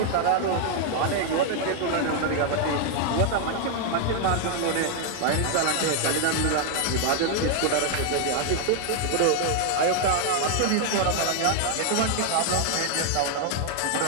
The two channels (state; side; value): different; both; correlation 0.00